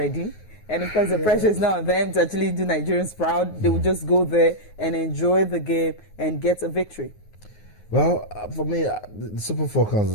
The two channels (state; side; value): late; right; 9.4 ms